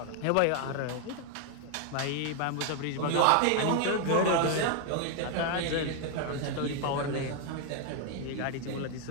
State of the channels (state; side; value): different; both; correlation 0.00